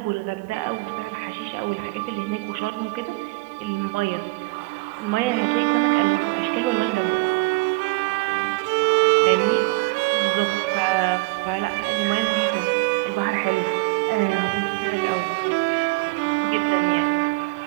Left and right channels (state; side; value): quieter; left; 24.6 dB